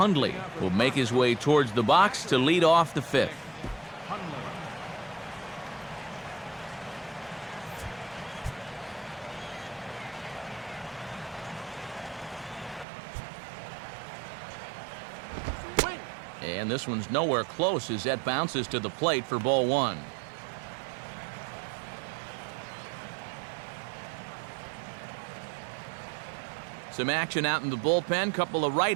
will make his way towards the box to lead off the 5th. And this one's nowhere close as that bounces to the plate for ball 1. Some action out in the bullpen. Couple of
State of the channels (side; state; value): left; drops out; at 12.9 s